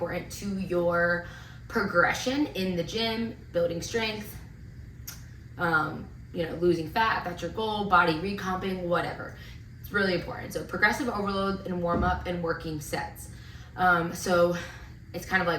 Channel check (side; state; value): both; identical; correlation 1.00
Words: to your progression in the gym, building strength, losing fat, if that's your goal, body recomping, whatever. It's really important. So progressive overload and warm up and working sets. So it's kind of